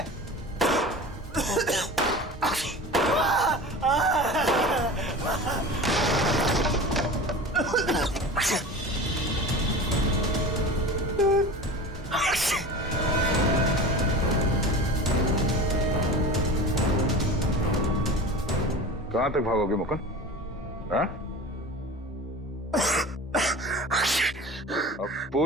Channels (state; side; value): normal; both; correlation 0.34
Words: कहां तक भागोगे मुकुंद? हाँ? अब